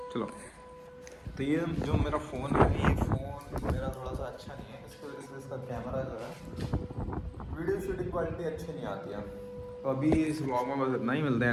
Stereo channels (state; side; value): identical; both; correlation 1.00